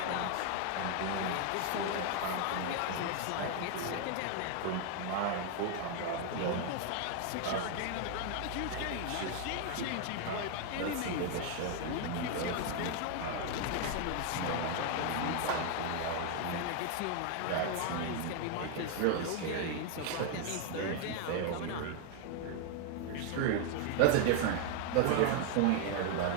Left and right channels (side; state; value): both; different; correlation 0.01